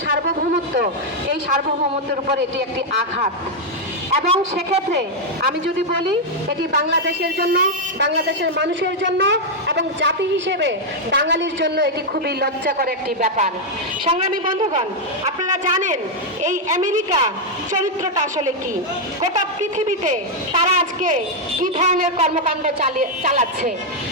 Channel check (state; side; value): normal; both; correlation -0.01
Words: সার্বভৌমত্ব, এই সার্বভৌমত্বের উপর এটি একটি আঘাত। এবং সেক্ষেত্রে আমি যদি বলি এটি বাংলাদেশের জন্য, বাংলাদেশের মানুষের জন্য এবং জাতি হিসেবে বাঙালির জন্য এটি খুবই লজ্জাকর একটি ব্যাপার। সংগ্রামী বন্ধুগণ, আপনারা জানেন এই আমেরিকা চরিত্রটা আসলে কি, গোটা পৃথিবীতে তারা আজকে কি ধরনের কর্মকাণ্ড চালাচ্ছে